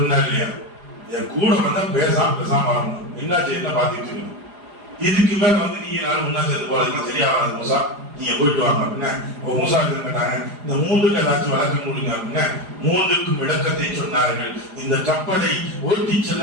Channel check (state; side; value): late; left; 4.9 ms